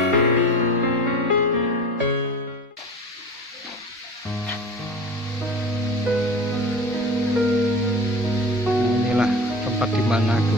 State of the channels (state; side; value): normal; both; correlation 0.36